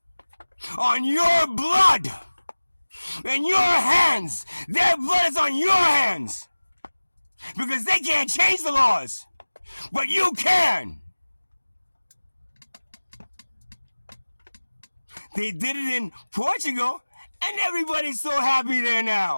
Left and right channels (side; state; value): both; inverted; correlation -1.00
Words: on your blood and your hands. Their blood is on your hands because they can't change the laws, but you can. They did it in Portugal, and everybody's so happy there